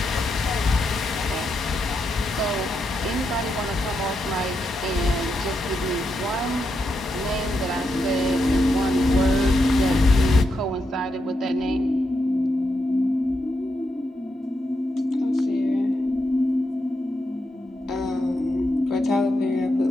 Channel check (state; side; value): normal; both; correlation 0.83